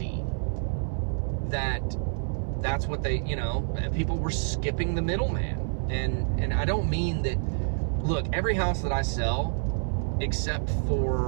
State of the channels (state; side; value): silent; left; 56 dB below the other